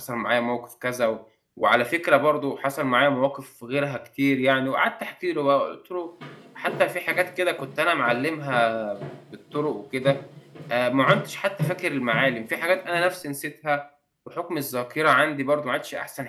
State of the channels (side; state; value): both; identical; correlation 1.00